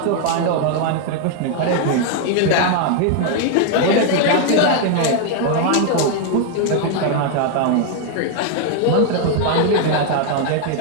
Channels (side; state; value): both; different; correlation 0.00